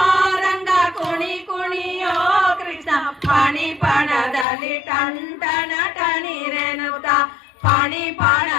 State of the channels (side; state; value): right; drops out; at 4.5 s